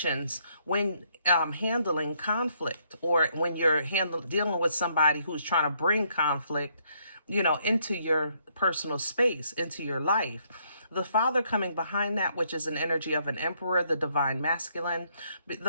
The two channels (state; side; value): inverted; both; correlation -0.71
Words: when handling conflict, or when you're dealing with somebody who's trying to bring conflict, you know, into your personal space, into your life. The Father coming behind that, which is an energy of an Emperor, the divine masculine.